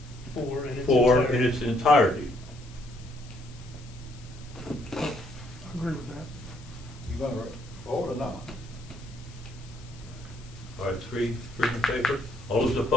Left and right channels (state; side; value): noise; left; hiss, 23 dB below the sound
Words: 4 in its entirety? I agree with that. You gonna vote or not? All right, three in favor, all those